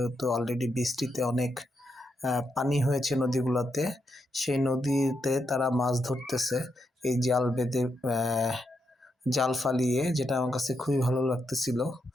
অলরেডি বৃষ্টিতে অনেক পানি হয়েছে নদীগুলোতে, সেই নদীতে তারা মাছ ধরতেছে এই জাল বেঁধে, জাল ফালিয়ে, যেটা আমার কাছে খুবই ভালো লাগতেছিল।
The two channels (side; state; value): both; normal; correlation 0.82